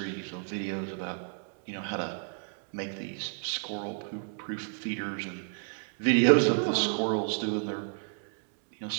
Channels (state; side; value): silent; left; 57 dB below the other